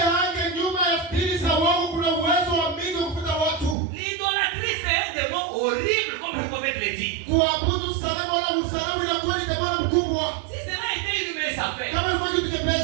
hange nyuma ya dini za wao kuna uwezo wa mingi kufuta watu. L'idolâtrie, c'est un démon horrible, comme le prophète le dit. Kuabudu sanamu wala usanamu inakuwa ni demoni mkubwa. Si cela était une mince affaire, Kama ilikuwa kitu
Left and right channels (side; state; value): left; drops out; at 3.8 s